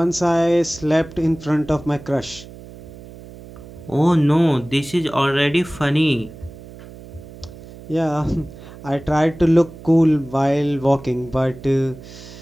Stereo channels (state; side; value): noise; right; hum, 17 dB below the sound